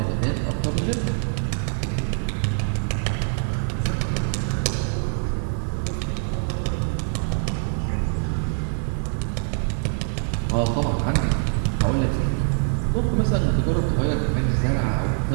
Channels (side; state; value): left; silent; 63 dB below the other